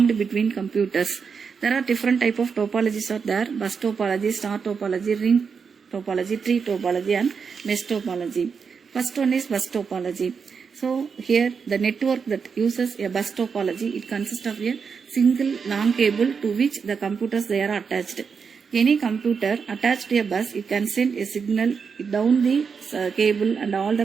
between computers. There are different type of topologies are there: bus topology, star topology, ring topology, tree topology and mesh topology. First one is bus topology. So here the network that uses a bus topology, it consists of a single long cable to which the computers they are attached. Any computer attached to a bus, it can send a signal down the cable and all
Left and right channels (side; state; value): left; quieter; 5.9 dB